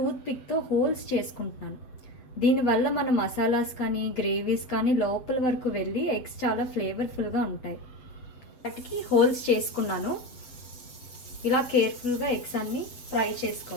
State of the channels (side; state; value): right; late; 8.0 ms